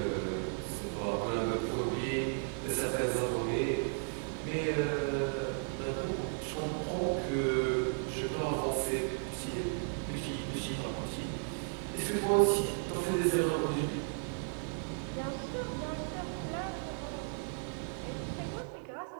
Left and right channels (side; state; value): left; silent; 55 dB below the other